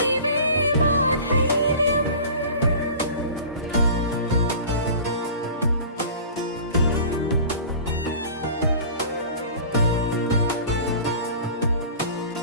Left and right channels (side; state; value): both; inverted; correlation -0.40